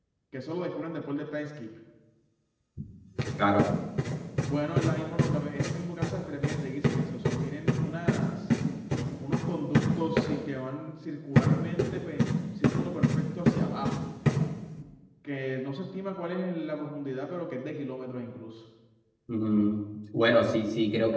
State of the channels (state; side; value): identical; both; correlation 1.00